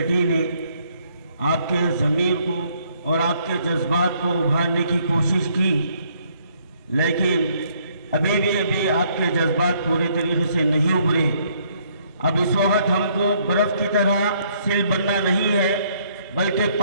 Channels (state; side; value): inverted; both; correlation -0.67